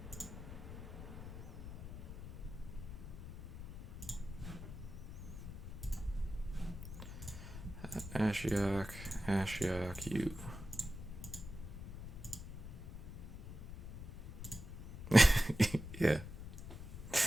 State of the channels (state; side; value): noise; left; rumble, 10 dB below the sound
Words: Ashiok, Ashiok, you. Yeah.